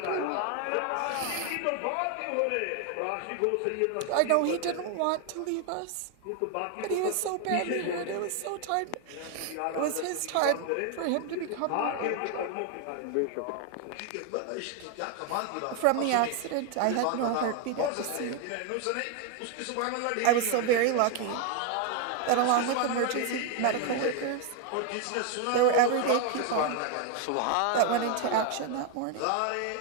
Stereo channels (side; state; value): both; different; correlation 0.01